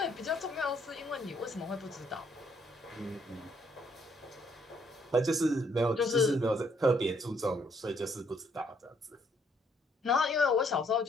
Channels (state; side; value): normal; both; correlation 0.68